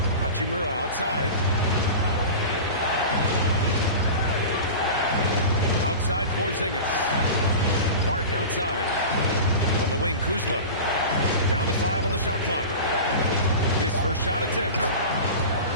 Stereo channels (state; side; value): inverted; both; correlation -0.31